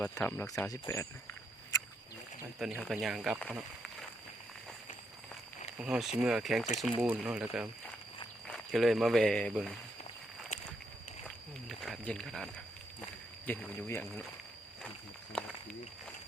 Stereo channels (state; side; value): normal; both; correlation 0.78